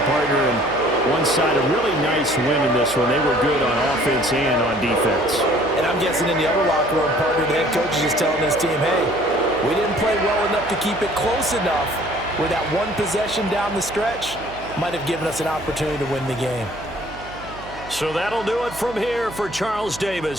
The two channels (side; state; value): right; noise; hum, 16 dB below the sound